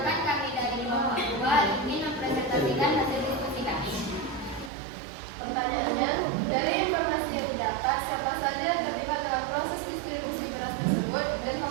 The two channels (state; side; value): drops out; left; at 4.7 s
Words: kami dari kelompok 2 ingin mempresentasikan hasil diskusi kami. Pertanyaannya, dari informasi yang didapat, siapa saja yang terlibat dalam proses distribusi beras tersebut dan